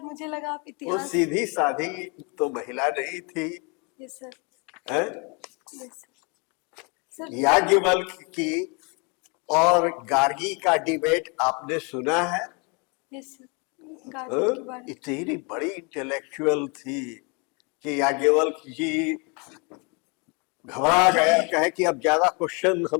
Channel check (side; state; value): right; quieter; 32.4 dB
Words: मुझे लगा आप वो इतिहास। सीधी साधी तो महिला नहीं थी, यस सर, हैं? यस सर, याज्ञवल्क्य की और गार्गी का डिबेट आपने सुना है? यस सर, गार्गी के बारे में। इतनी बड़ी इंटेलेक्चुअल थी कि याज्ञवल्क्य जी घबरा गया, कहे कि अब ज्यादा क्वेश्चन